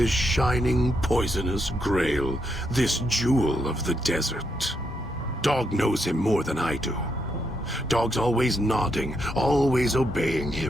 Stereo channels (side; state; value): both; normal; correlation 0.79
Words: shining, poisonous grail, this jewel of the desert. Dog knows him more than I do. Dog's always nodding, always obeying